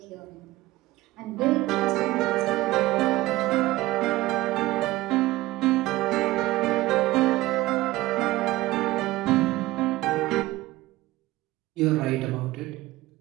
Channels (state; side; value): quieter; left; 17.9 dB